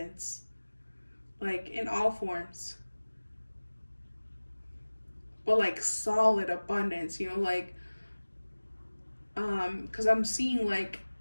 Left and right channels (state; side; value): inverted; both; correlation -1.00